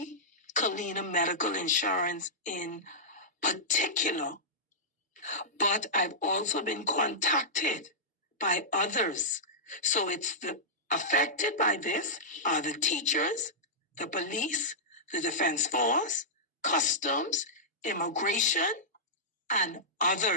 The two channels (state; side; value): normal; both; correlation -0.13